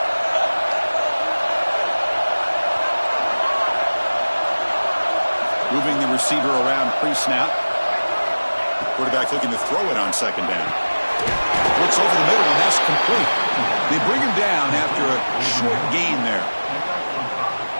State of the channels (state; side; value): inverted; both; correlation -1.00